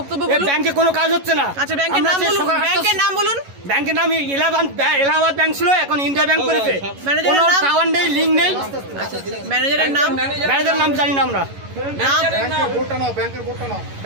বলুন। ব্যাংকে কোনো কাজ হচ্ছে না। আচ্ছা ব্যাংকের নাম বলুন, ব্যাংকের নাম বলুন। ব্যাংকের নাম এলাহাবাদ ব্যাংক ছিল, এখন ইন্ডিয়া ব্যাংক করেছে। কোনো টাওয়ার নেই, লিঙ্ক নেই। ম্যানেজারের নাম? ম্যানেজারের নাম জানি না আমরা।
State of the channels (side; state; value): left; late; 11 ms